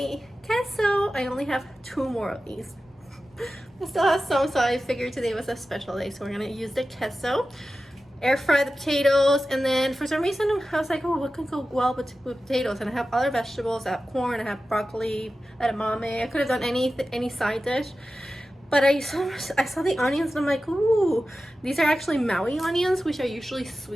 queso. I only have 2 more of these. I still have some, so I figured today was a special day, so we're gonna use the queso. Air fry the potatoes, and then for some reason I was like, oh, what could go well with potatoes? And I have other vegetables. I have corn, I have broccoli, edamame. I could have done any side dish, but I saw the onions, and I'm like, ooh, these are actually Maui onions, which are usually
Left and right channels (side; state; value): both; normal; correlation 0.94